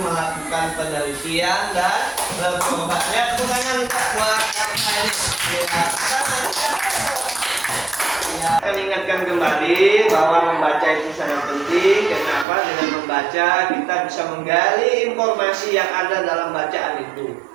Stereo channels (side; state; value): left; drops out; at 12.5 s